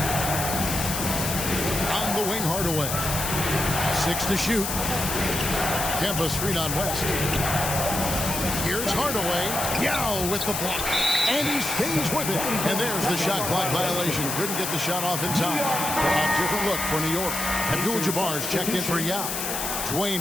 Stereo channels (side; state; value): left; noise; hiss, 3 dB below the sound